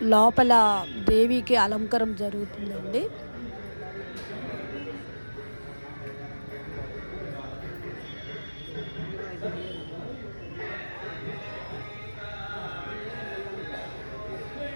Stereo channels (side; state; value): both; inverted; correlation -1.00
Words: లోపల దేవికి అలంకారం జరుగుతుందండి.